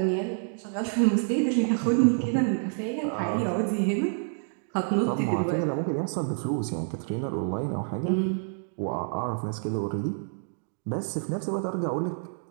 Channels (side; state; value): left; silent; digital silence